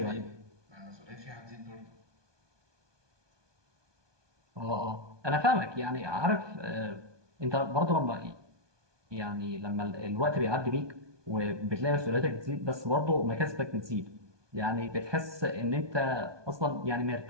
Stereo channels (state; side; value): late; left; 1.2 ms